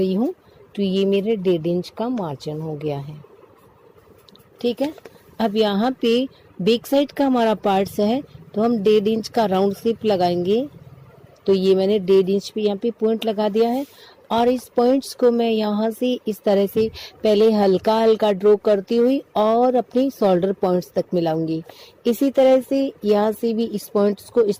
हूँ तो ये मेरे 1.5 इंच का मार्जिन हो गया है। ठीक है, अब यहाँ पे बैक साइड का हमारा पार्ट्स है तो हम 1.5 इंच का राउंड शेप लगाएंगे। तो ये मैंने 1.5 इंच पे यहाँ पे पॉइंट लगा दिया है और इस पॉइंट्स को मैं यहाँ से इस तरह से पहले हल्का हल्का ड्रॉ करती हुई और अपनी शोल्डर पॉइंट्स तक मिलाऊंगी। इसी तरह से यहाँ से भी इस पॉइंट्स को इस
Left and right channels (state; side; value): identical; both; correlation 1.00